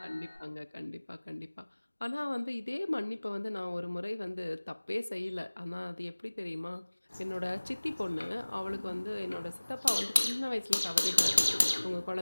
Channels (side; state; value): both; inverted; correlation -1.00